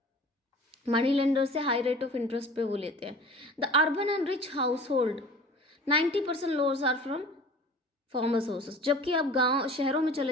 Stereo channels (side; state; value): both; normal; correlation 0.43